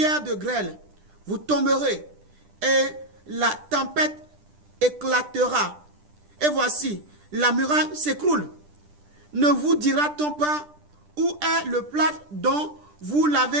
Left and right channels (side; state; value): left; late; 10 ms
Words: de grêle, vous tomberez, et la tempête éclatera. Et voici, la muraille s'écroule. Ne vous dira-t-on pas où est le plâtre dont vous